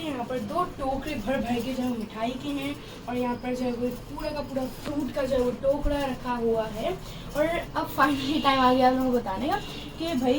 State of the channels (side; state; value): both; identical; correlation 1.00